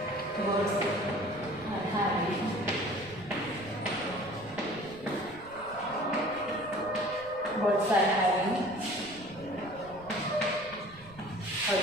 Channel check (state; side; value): noise; right; rumble, 21 dB below the sound